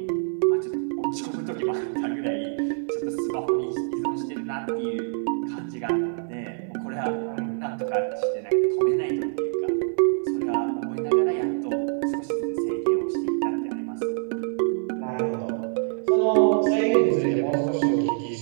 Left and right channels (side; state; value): left; silent; digital silence